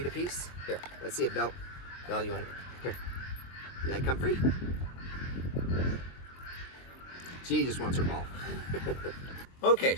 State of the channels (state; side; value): late; right; 23 ms